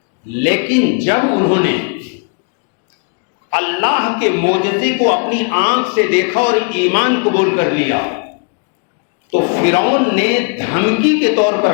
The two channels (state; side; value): quieter; right; 37.7 dB